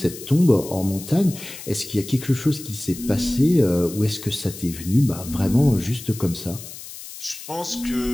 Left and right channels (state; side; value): noise; left; hiss, 13 dB below the sound